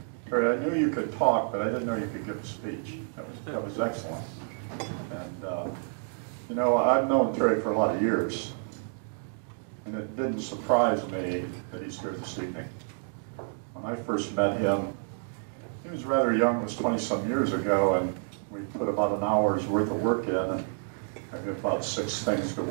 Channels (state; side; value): silent; left; 58 dB below the other